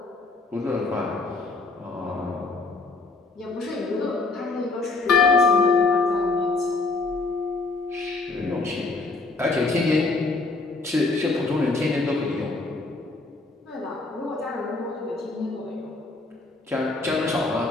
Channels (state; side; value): quieter; right; 3.6 dB